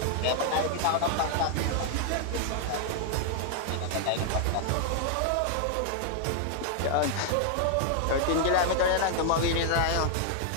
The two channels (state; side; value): different; both; correlation 0.00